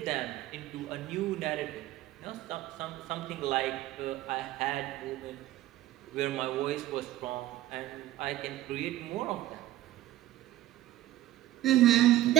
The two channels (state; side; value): quieter; left; 15.0 dB